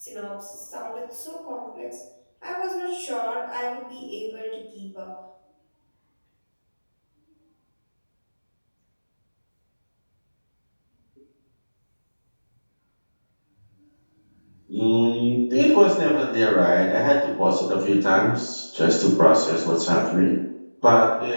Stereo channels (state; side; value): inverted; both; correlation -1.00